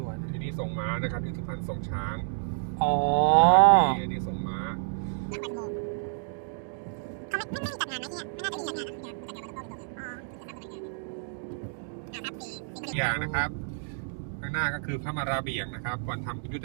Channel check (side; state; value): left; silent; digital silence